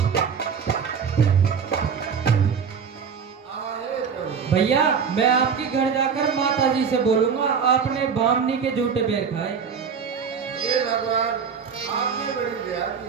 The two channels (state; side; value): quieter; left; 6.4 dB